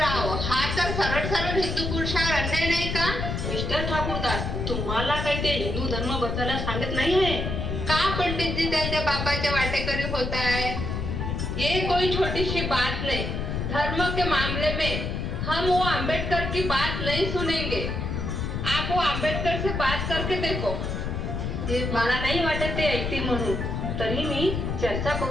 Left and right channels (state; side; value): noise; left; rumble, 2 dB below the sound